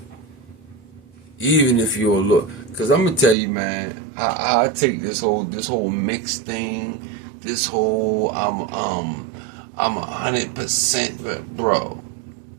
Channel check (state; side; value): drops out; left; at 3.4 s